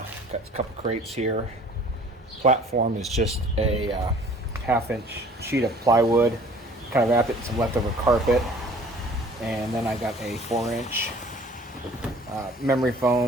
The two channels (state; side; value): normal; both; correlation 0.51